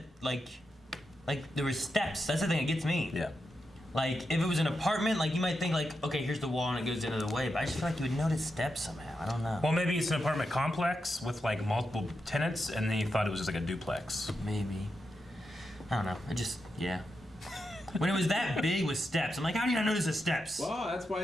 like there was steps. That's the thing that gets me. Yeah. Like if it was an apartment, like you might think like, okay, here's the wall and it goes into the way, but I just feel like you would notice steps somehow. I don't know. Well, maybe it's an apartment complex with like multiple tenants, and then you thought it was just like a duplex. Maybe. I don't know. Yeah. When it was that big with steps, I'm like, how do you not notice the steps? Well, that's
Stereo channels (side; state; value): both; normal; correlation 0.87